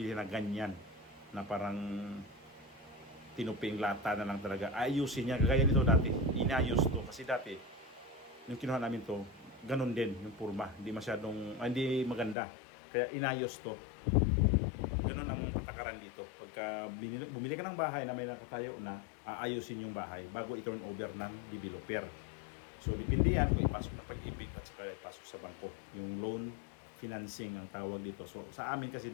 na ganyan. Na parang tinuping lata na lang talaga. Ayusin niya. Gaya nito dati. Inayos to. Kasi dati, yung kinuha namin to, ganun din yung purma. Hindi masyadong, hindi maganda. Kaya inayos to. Ganun ang patakaran dito. Pagka bumili ka ng bahay na may nakatayo na, aayusin yung bahay bago i-turn over ng developer. So, depende yan kung ipasok na Pag-ibig at saka ipasok sa bangko. Yung loan financing ang tawag dito. So, sa amin kasi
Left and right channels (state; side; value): drops out; right; at 12.4 s